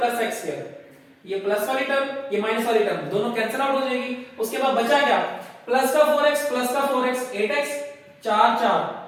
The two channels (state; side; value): identical; both; correlation 1.00